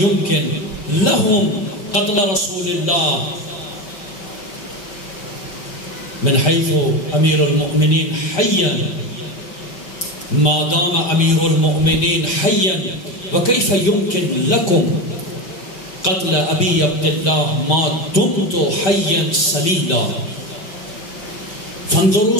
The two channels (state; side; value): late; right; 5.2 ms